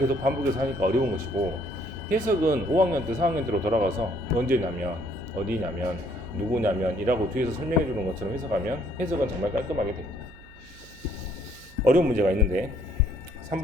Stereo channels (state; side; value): noise; right; hum, 23 dB below the sound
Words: 반복해서 하니까 어려운 것이고, 해석은 5학년 때 4학년 때로 돌아가서 언제냐면 어디냐면 누구냐면 이라고 뒤에서 설명해 주는 것처럼 해석하면 해석은 정말 깔끔하게 됩니다. 어려운 문제가 있는데